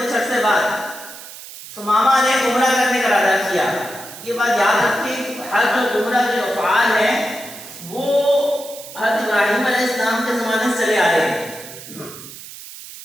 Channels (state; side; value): noise; right; hiss, 14 dB below the sound